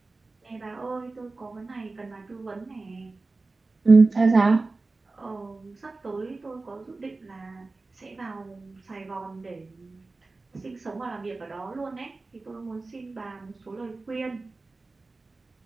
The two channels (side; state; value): left; quieter; 3.5 dB